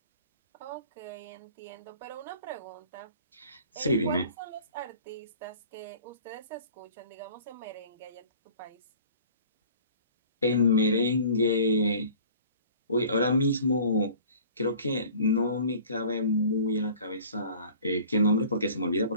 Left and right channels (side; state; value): both; inverted; correlation -0.47